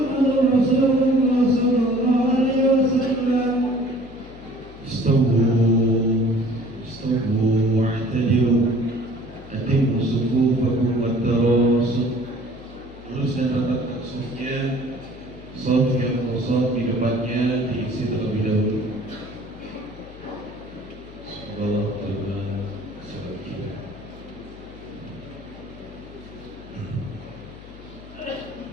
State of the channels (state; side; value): noise; left; hum, 19 dB below the sound